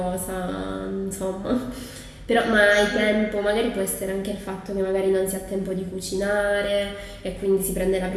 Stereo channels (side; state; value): both; identical; correlation 1.00